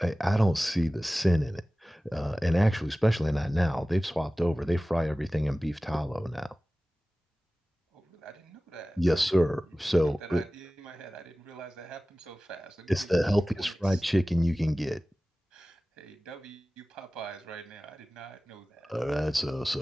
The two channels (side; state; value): both; normal; correlation 0.97